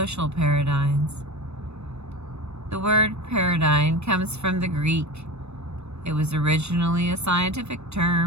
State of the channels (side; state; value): left; late; 0.81 ms